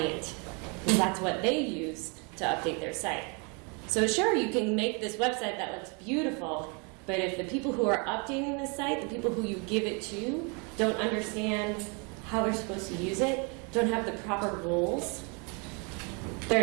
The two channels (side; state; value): left; quieter; 33.8 dB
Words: because that's what they use to update their site. So sure, you can make this website that looks beautiful, but if the people who are updating the site, the people who you give it to, don't understand how they're supposed to use it, don't have the proper rules, they're